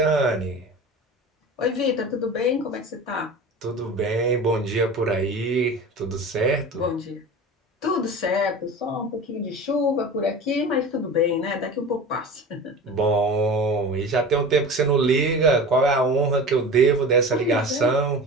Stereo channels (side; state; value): both; normal; correlation 0.34